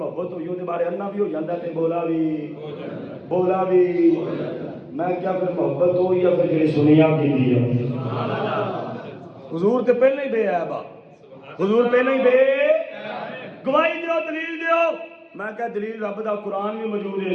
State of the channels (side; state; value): both; identical; correlation 1.00